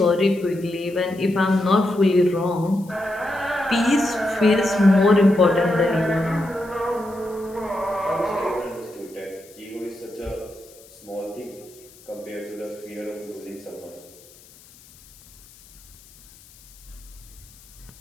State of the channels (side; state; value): left; noise; hiss, 24 dB below the sound